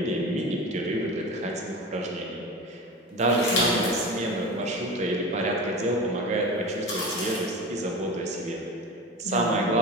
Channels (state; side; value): normal; both; correlation 0.30